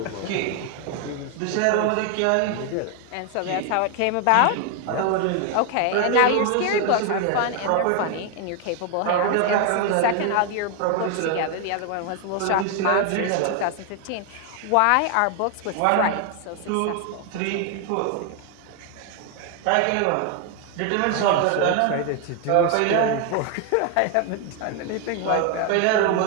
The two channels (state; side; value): different; both; correlation 0.01